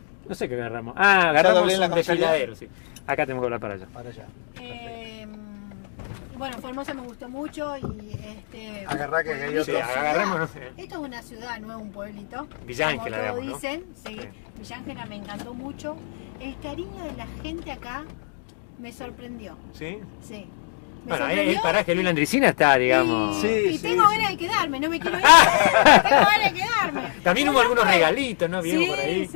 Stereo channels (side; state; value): right; silent; digital silence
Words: No sé qué agarramos. Ah, agarramos doblé la un comisaría. desfiladero, sí. Acá tenemos que hablar para allá. Para allá. Bueno, Formosa me gustó mucho y Agarrá que pueblito, Sí, ciudad. agarrémonos. Esto es una ciudad, no es un pueblito. Villa como Ángela, todos digamos, ¿no? dicen, sí. Sí. Villa Ángela me encantó mucho. El cariño de la gente acá me sorprendió. ¿Sí? Sí. Me Bueno, sorprendió el paraje de Luis Landricina está, digamos. Y, Sí, y sí, tengo sí. ganas de quedarme, no me quiero ir. Tengo ganas de quedarme. También hubo algunos regalitos, ¿no? Vimos Sí, por ahí.